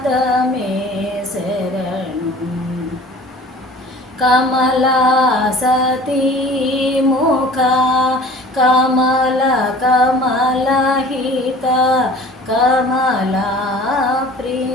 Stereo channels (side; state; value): both; normal; correlation 0.45